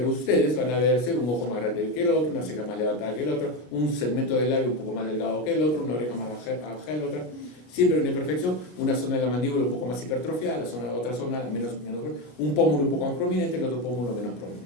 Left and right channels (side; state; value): right; late; 33 ms